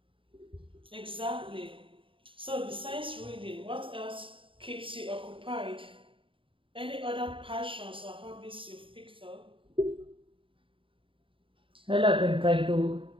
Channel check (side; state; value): left; late; 0.25 ms